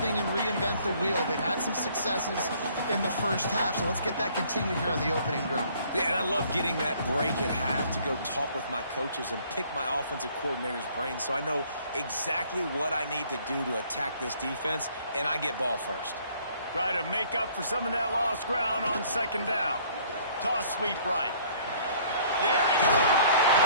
and reinvent the wheel. They've had some successes in the first half, so let's get that continued here on the opening drive. Yeah, and I love getting that break at half to go talk with my coaches and pick my offensive coordinator's brain so I know exactly what I need to do to attack this defense, and I get ball first. Try to make up for some of that lost ground on second down. Toss sweep right. There he goes.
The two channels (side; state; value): both; inverted; correlation -0.59